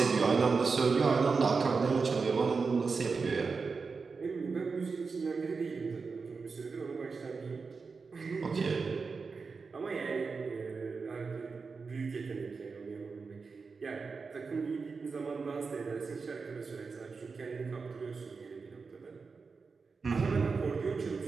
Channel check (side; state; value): left; quieter; 4.8 dB